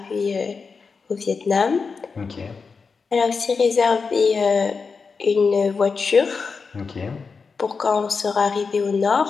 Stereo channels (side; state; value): right; quieter; 5.0 dB